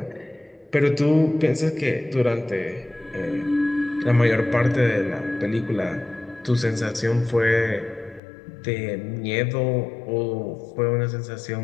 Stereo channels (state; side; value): drops out; right; at 8.2 s